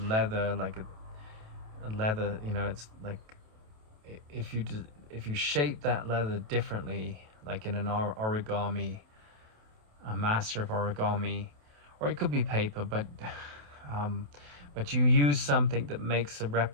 leather, like a leather, you know, it's like if you shape that leather differently, like in an origami, a master of origami, or it could be paper, but you use something that makes a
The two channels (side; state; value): left; late; 28 ms